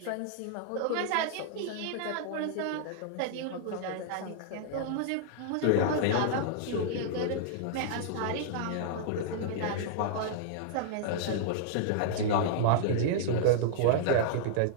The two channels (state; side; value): different; both; correlation -0.01